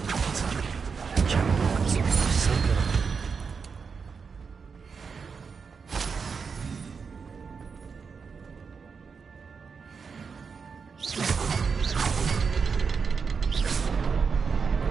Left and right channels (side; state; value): left; quieter; 5.6 dB